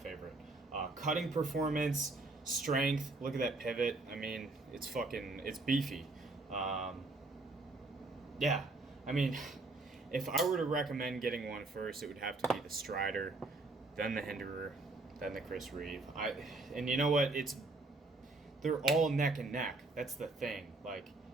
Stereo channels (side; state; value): left; quieter; 3.2 dB